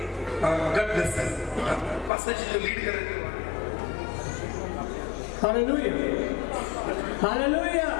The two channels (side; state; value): right; drops out; at 2.1 s